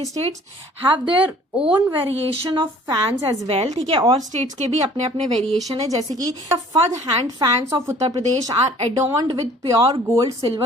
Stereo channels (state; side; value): normal; both; correlation 0.53